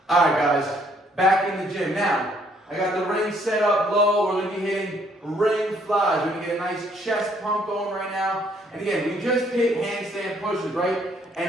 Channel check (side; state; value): both; normal; correlation 0.66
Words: All right, guys, back in the gym. Now, I got the ring set up low. We're going to be hitting ring flies. We're going to get a nice chest pump going right now. And again, we just hit handstand pushes, right?